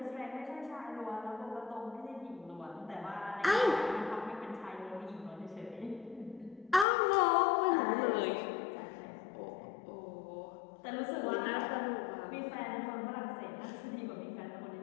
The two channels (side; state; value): right; drops out; at 6.9 s